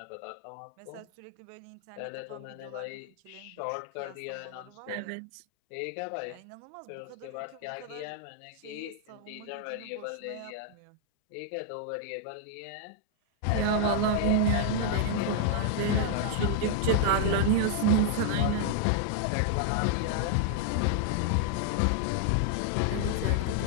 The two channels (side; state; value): both; different; correlation -0.01